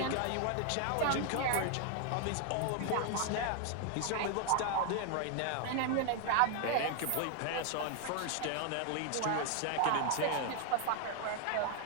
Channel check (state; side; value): different; both; correlation 0.00